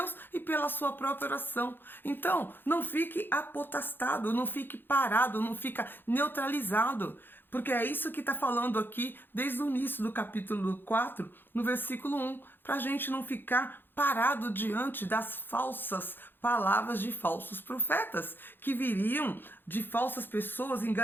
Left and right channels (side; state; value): right; late; 0.098 ms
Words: e pela sua própria oração. Então, não fique apotastado, não fique parado, não fica neutralizado, porque é isso que está falando aqui desde o início do capítulo 4, no versículo 1, para a gente não ficar parado diante das falsas palavras de falsos profetas, que viriam de falsas pessoas